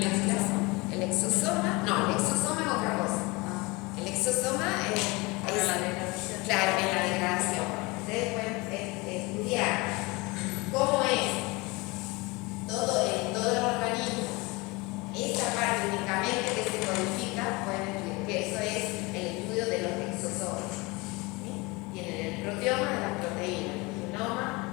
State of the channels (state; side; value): quieter; right; 24.8 dB